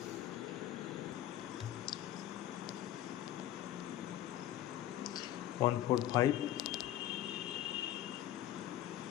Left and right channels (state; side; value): quieter; right; 12.5 dB